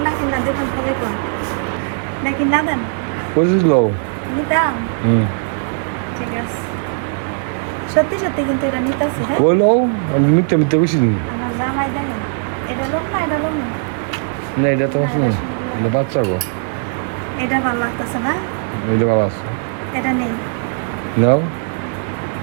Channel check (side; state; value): left; silent; digital silence